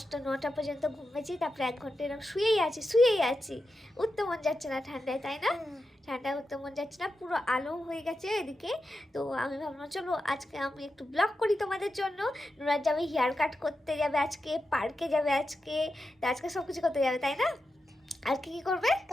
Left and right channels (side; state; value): both; normal; correlation 0.89